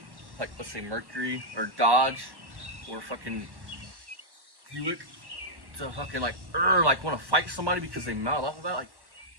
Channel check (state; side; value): late; left; 1.1 ms